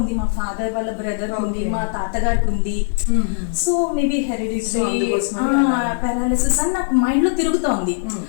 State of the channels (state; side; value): silent; right; 66 dB below the other